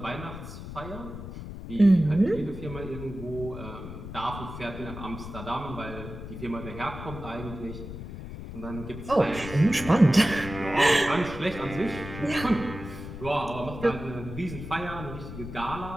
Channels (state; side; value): noise; left; rumble, 10 dB below the sound